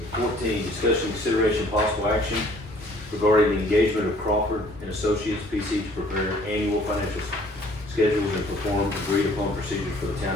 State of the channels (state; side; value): normal; both; correlation 0.57